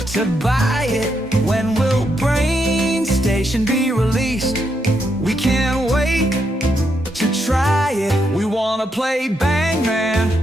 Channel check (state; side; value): normal; both; correlation 0.80